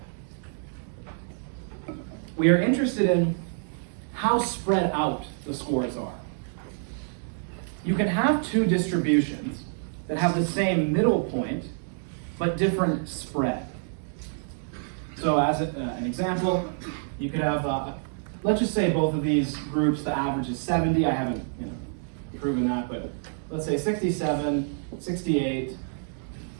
We are interested in how spread out the scores are. You can have two distributions that have the same middle point, but different spread. So as an example, you could have, let's just say both of these groups, the average is 70. I haven't proven that, but let's say 67, 68,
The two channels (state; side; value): silent; left; digital silence